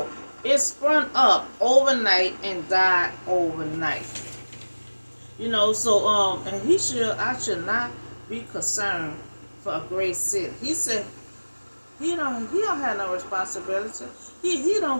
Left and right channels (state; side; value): inverted; both; correlation -1.00